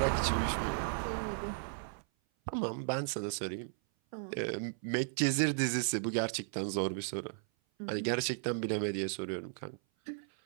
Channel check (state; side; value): silent; left; 54 dB below the other